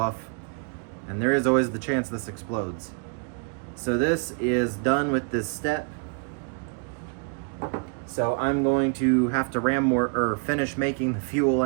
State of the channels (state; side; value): quieter; left; 38.6 dB